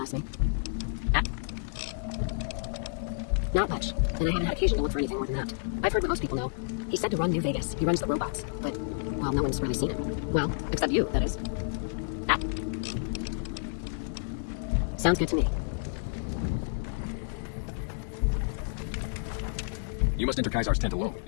me. Not much, and I haven't had occasion to look for anything more than that. I've heard what most people know. He said to run New Vegas. He runs the robots, but, well, no one's really seen him. Well, except you, that is. Sounds good to me. You must enter Kaisar's tent alone.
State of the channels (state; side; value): silent; right; digital silence